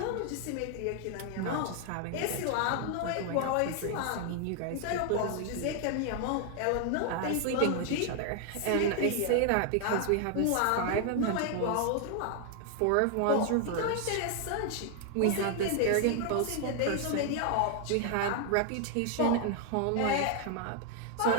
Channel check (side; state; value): both; different; correlation 0.00